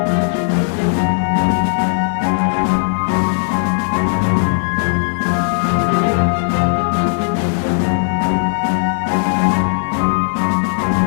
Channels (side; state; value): right; silent; 67 dB below the other